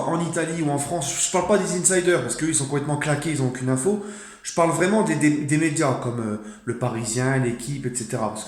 en Italie ou en France, je ne parle pas des insiders parce qu'eux ils sont complètement claqués, ils n'ont aucune info. Je parle vraiment des médias comme le Parisien, l'équipe, etc. Parce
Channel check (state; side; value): identical; both; correlation 1.00